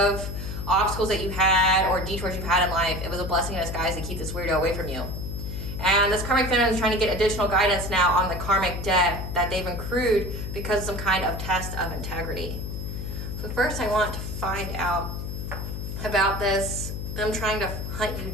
obstacles that you had or detours you've had in life, it was a blessing in disguise to keep this weirdo away from you. And this karmic feminine is trying to get additional guidance now on the karmic debt that they've accrued because of some kind of test of integrity. So first I want to find out about this, them trying to hunt you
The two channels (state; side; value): noise; left; hum, 6 dB below the sound